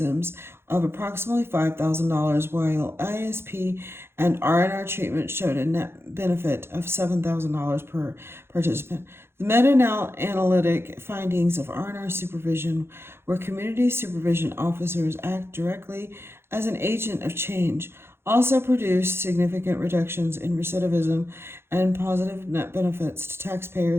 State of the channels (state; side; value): late; left; 0.12 ms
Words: of approximately $5,000, while ISP and R&R treatment showed a net benefit of $7,000 per participant. The meta-analytic findings of R&R supervision, where community supervision officers act directly as an agent of change, also produced significant reductions in recidivism and positive net benefits to